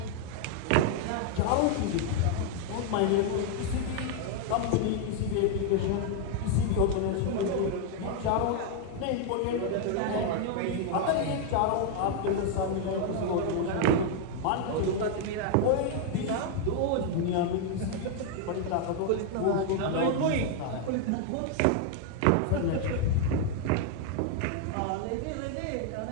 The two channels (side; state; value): both; different; correlation 0.00